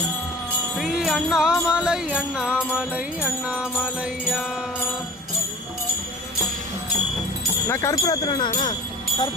ஸ்ரீ அண்ணாமலை அண்ணாமலை அண்ணாமலையா நான் கற்பூரத்துறேண்ணா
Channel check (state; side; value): normal; both; correlation 0.47